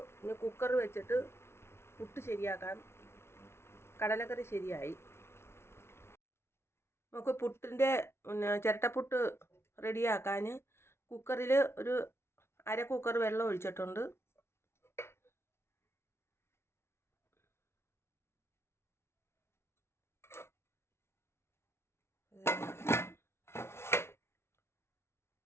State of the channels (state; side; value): late; right; 0.12 ms